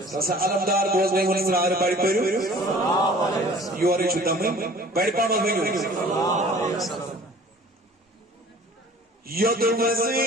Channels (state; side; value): normal; both; correlation 0.48